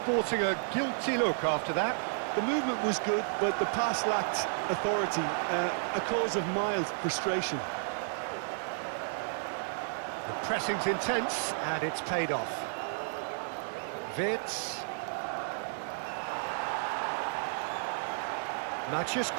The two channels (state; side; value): silent; left; digital silence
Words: a guilty look after that. The movement was good, but the pass lacked authority, a cause of mild frustration. The pressing's intense, and it's paid off. Wirtz. Matheus